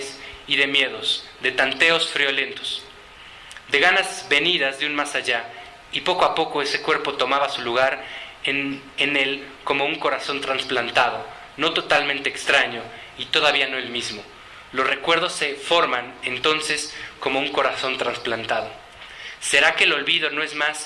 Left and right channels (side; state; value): both; identical; correlation 1.00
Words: y de miedos, de tanteos friolentos, de ganas venidas de un más allá, y poco a poco ese cuerpo tomaba su lugar en él como un corazón trasplantado, no totalmente extraño y todavía no el mismo. Los recuerdos se forman entonces como un corazón trasplantado. ¿Será que el olvido no es